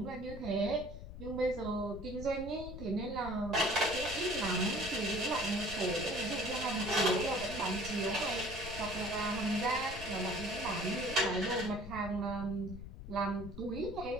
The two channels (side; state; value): left; noise; rumble, 11 dB below the sound